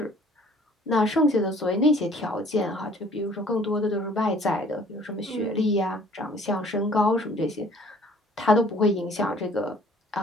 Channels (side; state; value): both; normal; correlation 0.55